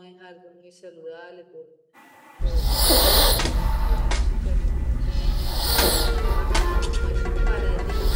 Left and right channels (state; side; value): identical; both; correlation 1.00